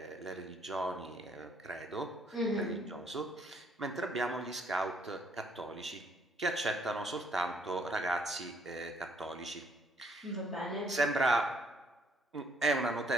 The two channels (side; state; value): both; normal; correlation 0.67